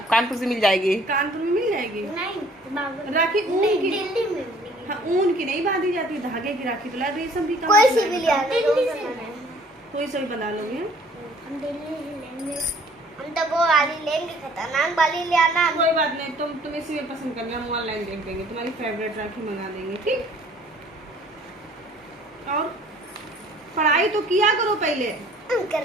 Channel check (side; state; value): both; normal; correlation 0.55